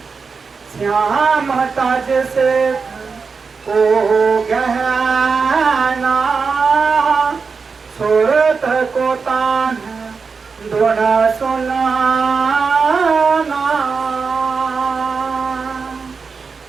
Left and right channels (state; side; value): quieter; left; 5.0 dB